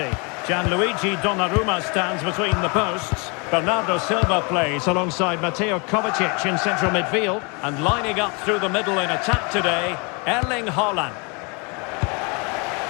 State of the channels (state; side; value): quieter; right; 31.9 dB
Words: Gianluigi Donnarumma stands between the posts. Bernardo Silva plays alongside Mateo Kovacic in central midfield. And lining up through the middle in attack today, Erling Haaland.